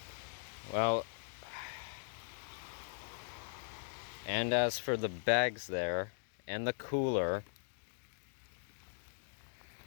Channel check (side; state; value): right; silent; digital silence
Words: well, and as for the bags there and the cooler,